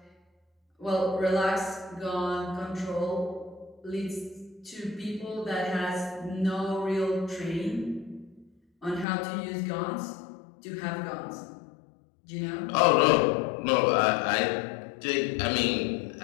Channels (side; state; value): right; drops out; at 9.1 s